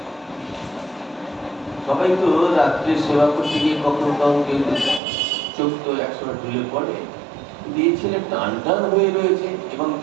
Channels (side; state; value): left; drops out; at 5.0 s